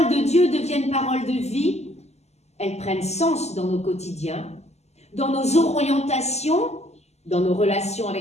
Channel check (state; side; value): late; right; 0.32 ms